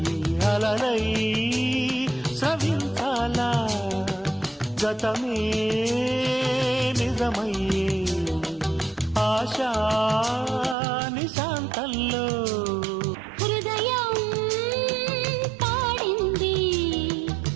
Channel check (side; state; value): left; drops out; at 10.8 s